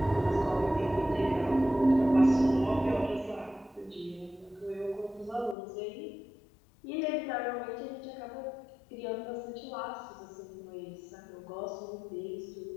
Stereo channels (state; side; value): drops out; right; at 5.6 s